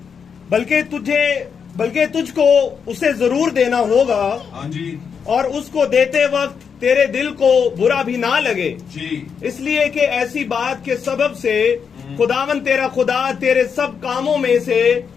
बल्कि तुझको उसे जरूर देना होगा। हाँ जी। और उसको देते वक्त तेरे दिल को बुरा भी ना लगे जी, इसलिए कि ऐसी बात के सबब से खुदावन तेरा खुदा तेरे सब कामों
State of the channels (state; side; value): quieter; right; 6.6 dB